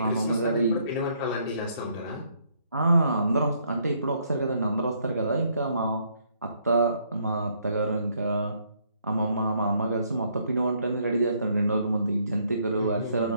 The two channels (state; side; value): inverted; both; correlation -0.70